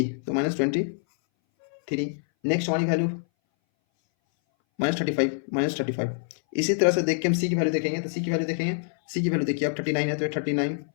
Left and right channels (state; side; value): silent; right; 60 dB below the other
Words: तो -23। नेक्स्ट हमारी वैल्यू -35। इसी तरह से देख के हम सी की वैल्यू देखेंगे, तो सी की वैल्यू देखेंगे, सी की वैल्यू देखिए अब 39 है तो 39।